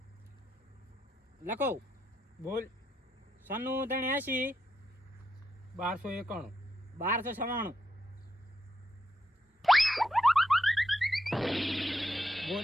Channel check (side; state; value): both; normal; correlation 0.83